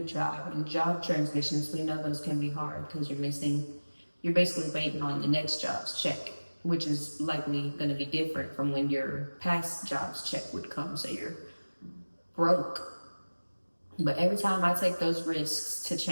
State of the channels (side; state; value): both; inverted; correlation -1.00